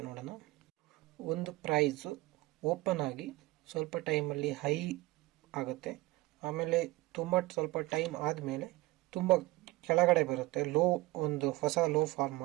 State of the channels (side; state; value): left; quieter; 20.1 dB